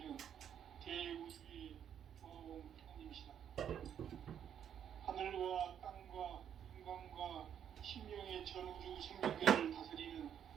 대우주의 조화공 하나님이시다. 하늘과 땅과 인간과 신명의 전우주 생명계를 다스리는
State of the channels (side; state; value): left; quieter; 9.1 dB